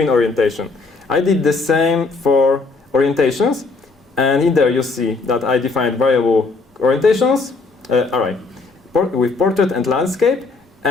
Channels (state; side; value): quieter; right; 3.9 dB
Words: orientation. I did the same for orientations. And in there you see that I defined variable orientations, array, with portrait and landscape.